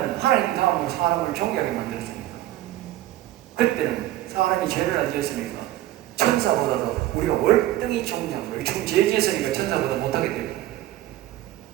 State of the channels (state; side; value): quieter; left; 14.6 dB